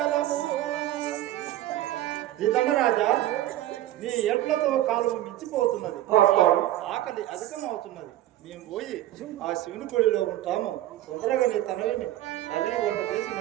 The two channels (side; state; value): left; quieter; 14.1 dB